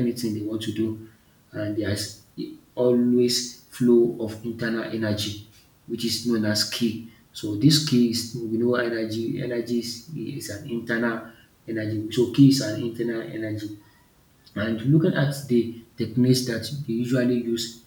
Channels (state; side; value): identical; both; correlation 1.00